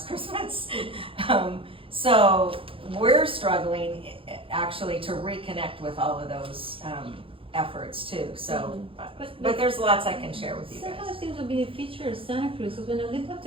Christmas. So we're struggling actually to reconnect with all of those efforts too. So, but there's lots I can share with you guys. Sometimes seems to be a feature of Santa Cruz, because when I lived up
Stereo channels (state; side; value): late; left; 0.26 ms